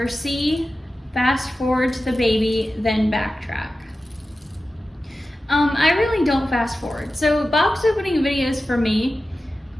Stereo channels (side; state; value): both; normal; correlation 0.94